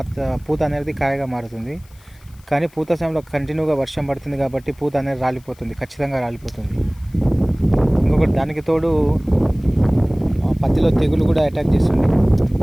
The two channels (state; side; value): noise; left; hiss, 29 dB below the sound